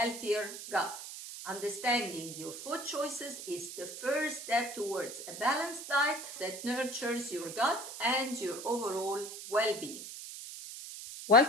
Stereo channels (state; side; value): noise; right; hiss, 10 dB below the sound